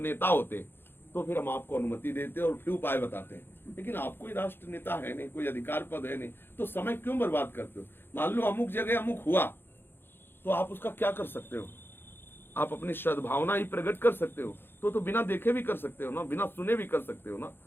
होते तो फिर हम आपको अनुमति देते और फिर उपाय बताते हैं, लेकिन आप कोई राष्ट्र नेता है नहीं, कोई अधिकार पद है नहीं, तो समय क्यों बर्बाद करते हो? मान लो अमुक जगह अमुक हुआ तो आप उसका क्या कर सकते हो? आप अपनी सद्भावना ही प्रकट कर सकते हो, तो बिना देखे भी कर सकते हो ना, बिना सुने भी कर सकते हो ना।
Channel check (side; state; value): right; late; 0.10 ms